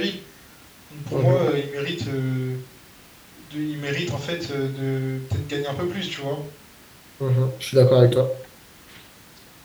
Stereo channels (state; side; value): identical; both; correlation 1.00